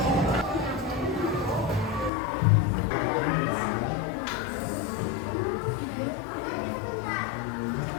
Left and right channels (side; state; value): right; drops out; at 2.1 s